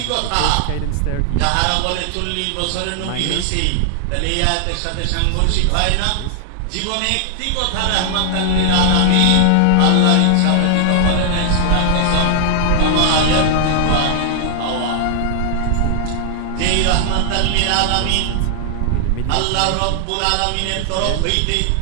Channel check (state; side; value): different; both; correlation 0.00